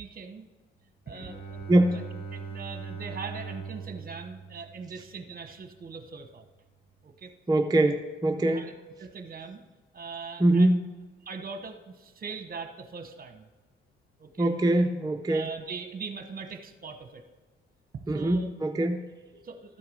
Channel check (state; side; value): normal; both; correlation 0.87